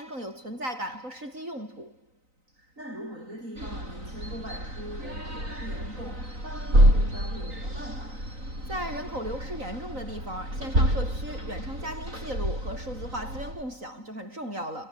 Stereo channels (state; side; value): late; left; 3.9 ms